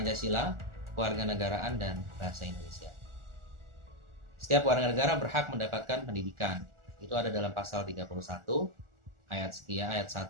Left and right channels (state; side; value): late; left; 1.4 ms